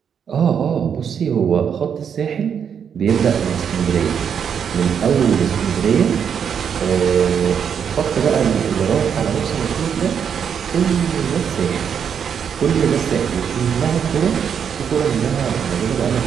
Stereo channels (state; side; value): quieter; left; 7.6 dB